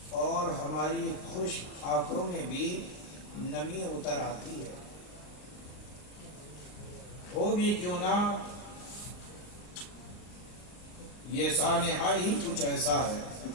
اور ہماری خوش آنکھوں میں بھی نمی اتر آتی ہے۔ ہو بھی کیوں نہ یہ سانحہ ہی کچھ ایسا ہے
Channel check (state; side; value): late; right; 39 ms